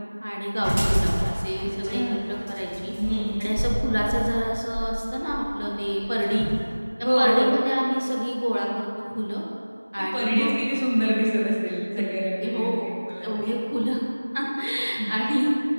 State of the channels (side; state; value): both; inverted; correlation -1.00